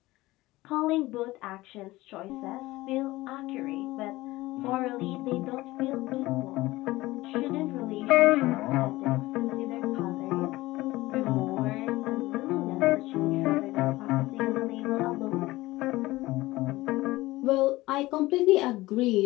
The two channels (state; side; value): quieter; right; 18.8 dB